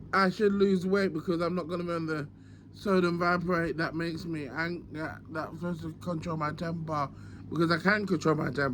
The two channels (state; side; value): identical; both; correlation 1.00